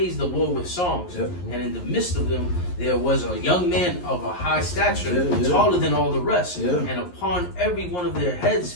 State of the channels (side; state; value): right; late; 11 ms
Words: the Lord with songs. Yep. And in the midst of them there was a young man of a high stature, taller than all the rest. Yeah. And upon every one of their